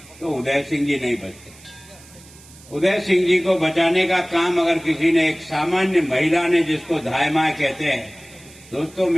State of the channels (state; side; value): noise; right; hiss, 23 dB below the sound